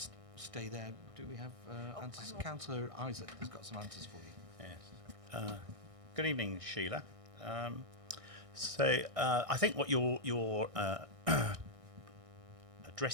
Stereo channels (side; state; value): left; late; 1.6 ms